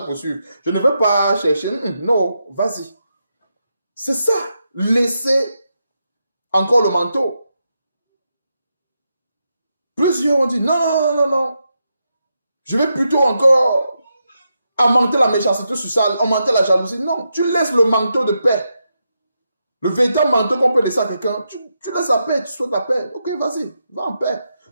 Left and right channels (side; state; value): both; inverted; correlation -0.84